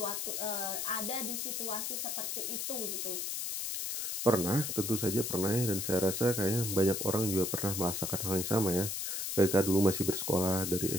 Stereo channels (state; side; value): noise; left; hiss, 2 dB below the sound